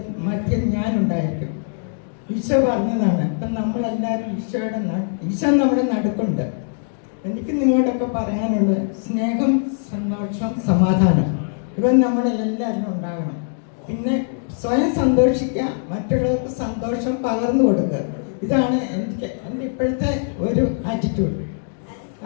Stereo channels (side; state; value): right; silent; digital silence